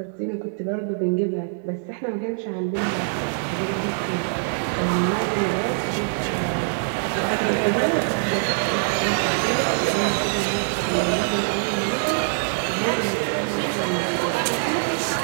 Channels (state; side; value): silent; left; 63 dB below the other